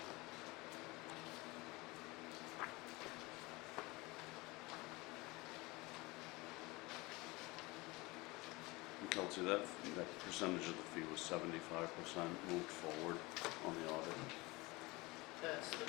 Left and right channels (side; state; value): right; quieter; 23.1 dB